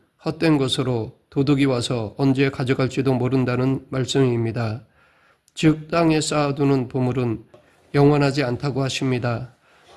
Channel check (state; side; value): identical; both; correlation 1.00